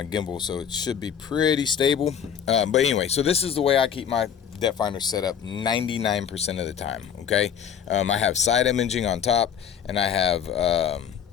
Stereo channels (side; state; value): right; quieter; 8.2 dB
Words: gimbal, so it should be pretty stable. But anyway, so this is the way I keep my depth finder set up 99% of the time. Okay, I have side imaging on top, and I have